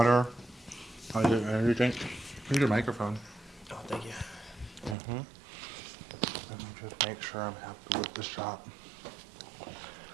I'll get an energy drink. Here's your microphone. Oh, thank you. Mm-hmm. Let me just make sure I'm happy with the shot.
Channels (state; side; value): drops out; left; at 5.0 s